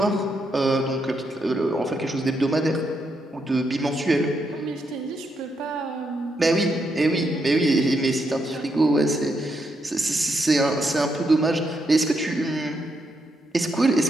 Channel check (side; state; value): both; normal; correlation 0.80